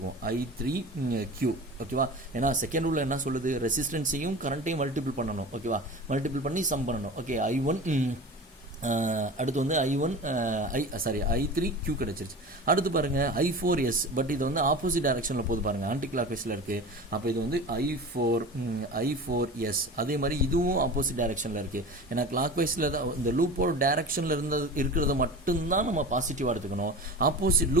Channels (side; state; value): both; normal; correlation 0.34